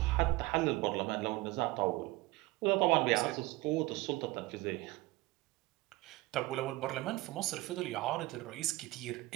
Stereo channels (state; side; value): quieter; left; 20.3 dB